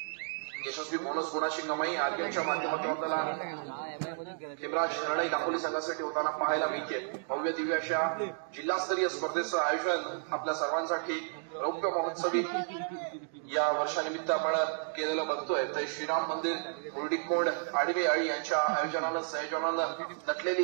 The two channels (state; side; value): silent; left; digital silence